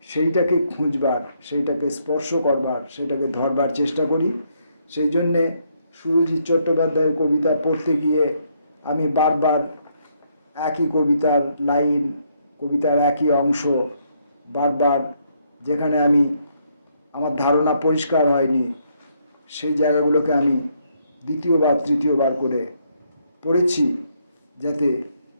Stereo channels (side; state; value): both; inverted; correlation -0.73